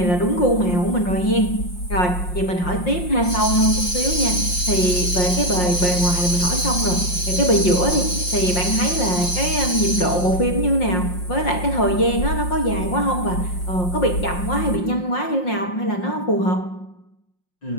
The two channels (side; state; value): right; late; 5.6 ms